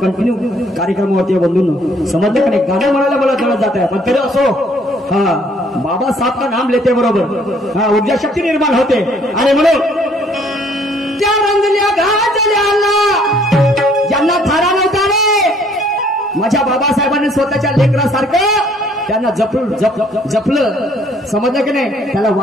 कार्यक्रमावरती बंधूंनो. समजलं का नाही. गाणं म्हणायला मला जवळ जात आहे पण तरी असो बाबा साहब का नाम लेते बरोबर ऊर्जा शक्ती निर्माण होते. आणि म्हणून त्या रंगल्या गाजल्याला ज्यांना थारा नव्हता रे. माझ्या बाबासाहेबांनी स्वतःच्या लेकरासारखं त्यांना जपलं. समजलं की नाही. त्याला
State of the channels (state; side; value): normal; both; correlation 0.62